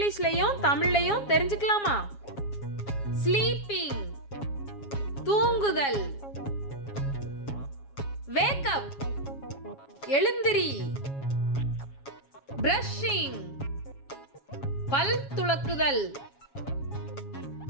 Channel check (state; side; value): late; right; 7.3 ms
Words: தமிழ்லையும் தெரிஞ்சுக்கலாமா? ஸ்லீப்பிங் தூங்குதல், வேக் அப் எழுந்திரி, பிரஷிங் பல் துலக்குதல்,